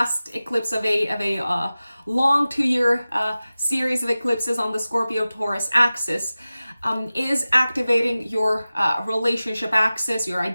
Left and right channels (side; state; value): both; inverted; correlation -0.96